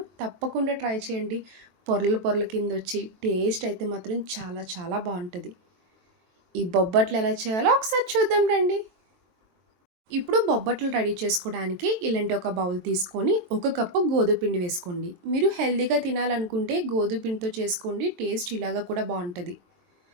తప్పకుండా ట్రై చేయండి. పొరలు పొరల కిందొచ్చి టేస్ట్ అయితే మాత్రం చాలా చాలా బావుంటది. ఈ బొబ్బట్లు ఎలా చేయాలో ఒకసారి చూద్దాం రండి. ఇప్పుడు బొబ్బట్లు రెడీ చేసుకోవడానికి ఇలాంటి ఒక బౌల్ తీసుకొని, ఒక కప్పు గోధుమ పిండి వేసుకోండి. మీరు హెల్తీగా తినాలనుకుంటే గోధుమ పిండితో చేసుకోండి. టేస్ట్ ఇలాగా కూడా బావుంటది.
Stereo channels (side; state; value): left; late; 23 ms